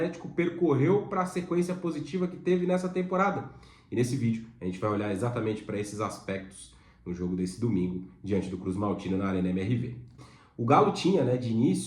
percorreu para a sequência positiva que teve nessa temporada. E nesse vídeo a gente vai olhar exatamente para esses aspectos no jogo desse domingo, diante do Cruz Maltino na Arena MRV. O Galo tinha, de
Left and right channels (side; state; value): both; identical; correlation 1.00